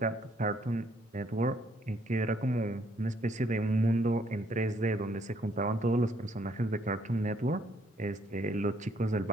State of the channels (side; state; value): both; normal; correlation 0.68